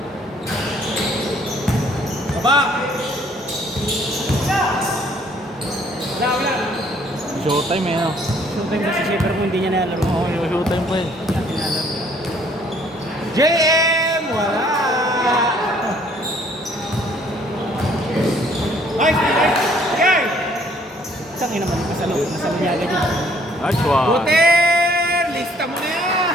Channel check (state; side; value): normal; both; correlation 0.62